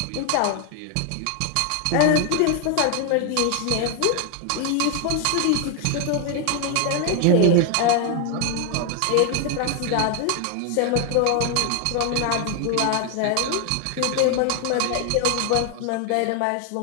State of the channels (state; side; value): different; both; correlation 0.01